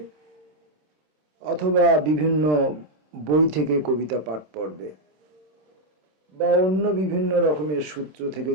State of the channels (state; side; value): late; left; 27 ms